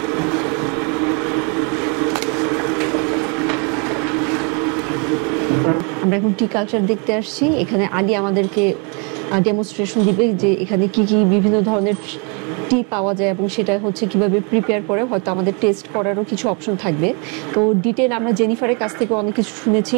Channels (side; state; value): left; quieter; 34.7 dB